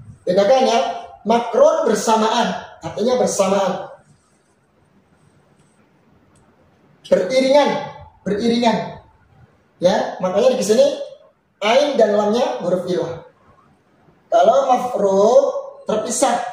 Bedakan ya, makrun bersamaan, artinya bersamaan. Beriringan. Ya, makanya di sini ain dan lamnya huruf ilah. Kalau mafruq terpisah,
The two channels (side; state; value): both; identical; correlation 1.00